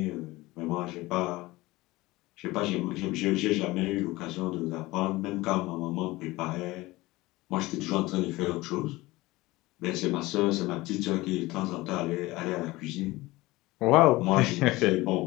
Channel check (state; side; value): quieter; right; 19.9 dB